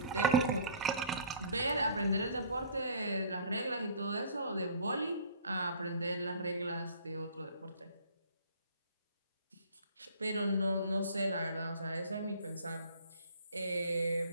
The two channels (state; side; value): inverted; both; correlation -0.50